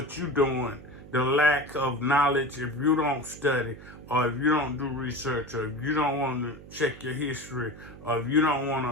you're doing, the lack of knowledge, if you don't study, or if you don't do research, or if you don't want to check your history, or if you don't want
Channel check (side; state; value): right; noise; hum, 17 dB below the sound